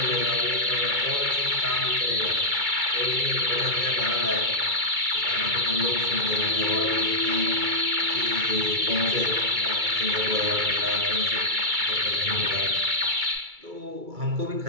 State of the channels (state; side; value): late; left; 2.3 ms